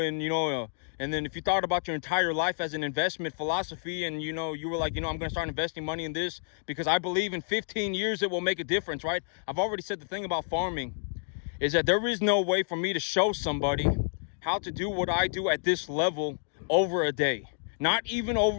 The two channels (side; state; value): right; silent; digital silence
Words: you thought about your entire life as an investment philosophy, and you were like, I'm going to start investing money in this because I believe in 15 years it will make a difference, right? I've already said the thing about farming is that there is no way for me to show somebody how to do what I do at this level over a day. Not even